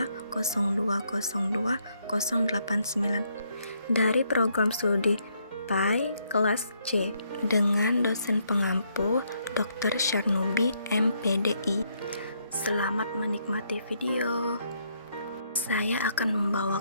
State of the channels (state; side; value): inverted; both; correlation -0.73